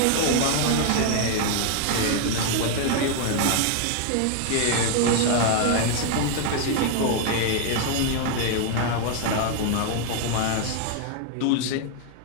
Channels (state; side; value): different; both; correlation 0.00